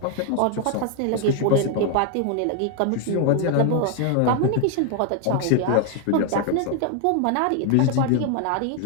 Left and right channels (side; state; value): both; different; correlation 0.00